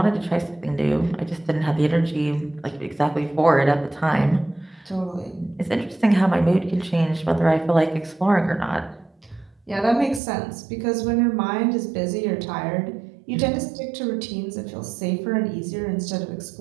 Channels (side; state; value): left; drops out; at 10.2 s